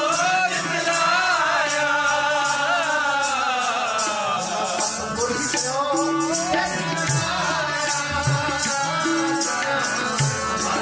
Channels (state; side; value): identical; both; correlation 1.00